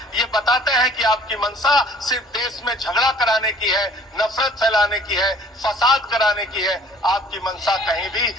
ये बताते हैं कि आपकी मंशा सिर्फ देश में झगड़ा कराने की है, नफरत फैलाने की है, फसाद कराने की है। आपकी मंशा कहीं भी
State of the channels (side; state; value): both; normal; correlation 0.53